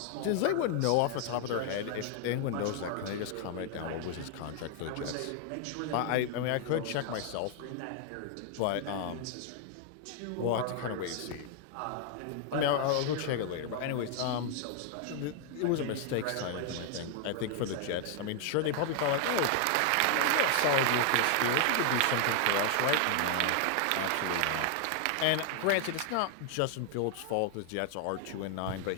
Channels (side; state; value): both; different; correlation 0.00